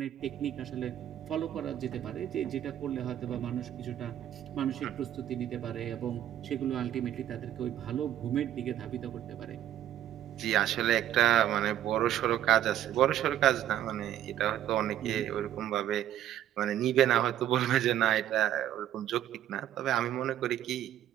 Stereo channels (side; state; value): left; quieter; 11.5 dB